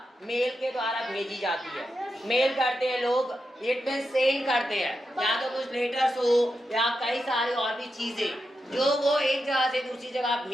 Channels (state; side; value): normal; both; correlation 0.87